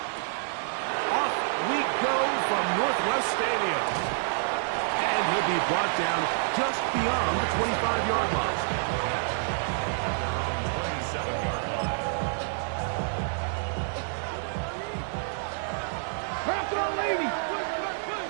Off we go from Northwest Stadium. And he'll be brought down just beyond the 25-yard line. Back on, lady.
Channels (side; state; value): left; silent; digital silence